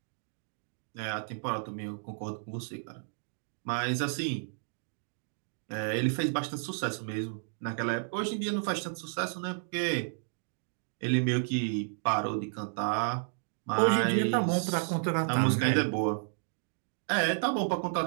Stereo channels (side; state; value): left; silent; digital silence